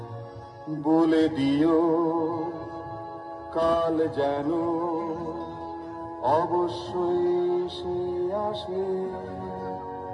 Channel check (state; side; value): identical; both; correlation 1.00